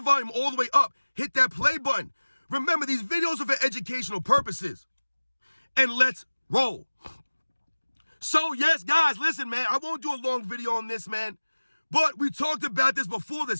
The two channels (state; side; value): inverted; both; correlation -1.00